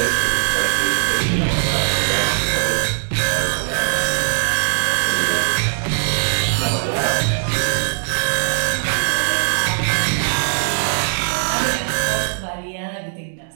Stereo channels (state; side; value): silent; left; digital silence